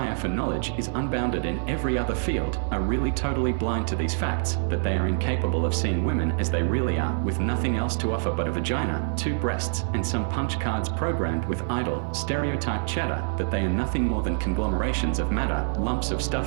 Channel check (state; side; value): silent; left; 58 dB below the other